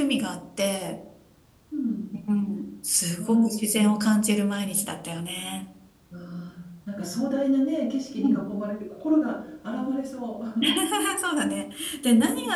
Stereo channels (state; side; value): identical; both; correlation 1.00